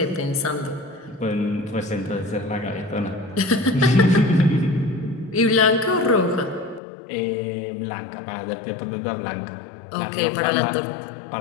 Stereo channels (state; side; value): drops out; right; at 6.8 s